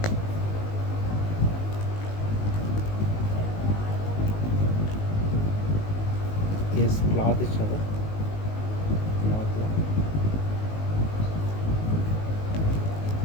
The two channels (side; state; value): right; late; 19 ms